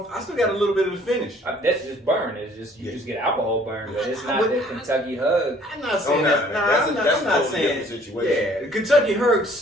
I still got a little bit of the finish. That's just burn. It's just you just get alcohol burn, but it's not the Kentucky hug. I'm not saying that. That's I'm not a saying. different situation. Yeah, the Kentucky Herd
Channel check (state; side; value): normal; both; correlation 0.57